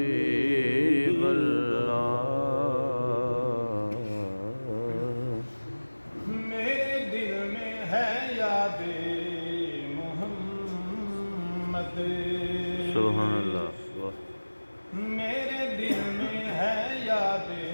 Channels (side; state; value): both; inverted; correlation -1.00